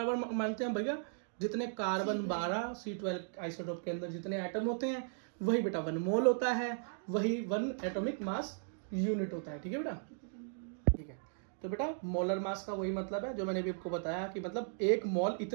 मानते हैं भैया? जितने कार्बन 12 C12 आइसोटोप के अंदर जितने एटम होते हैं वही बेटा 1 मोल होता है, वही 1 एटॉमिक मास यूनिट होता है। ठीक है बेटा? ठीक है। तो बेटा मोलर मास का वही मतलब है जो मैंने अभी आपको बताया, कि मतलब 1 मोल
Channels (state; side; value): silent; left; digital silence